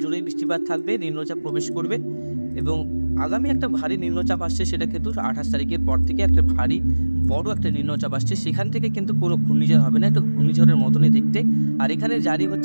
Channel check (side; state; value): both; inverted; correlation -1.00